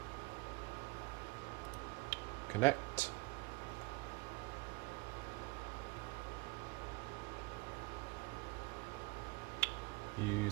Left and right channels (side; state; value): left; quieter; 25.0 dB